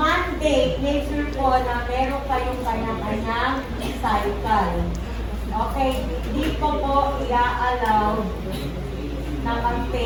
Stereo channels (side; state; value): both; identical; correlation 1.00